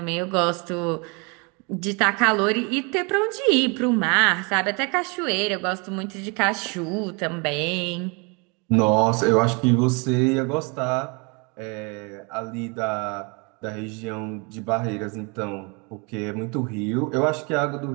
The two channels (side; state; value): left; quieter; 31.7 dB